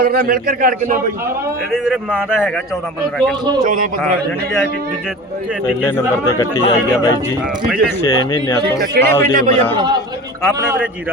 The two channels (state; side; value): normal; both; correlation 0.35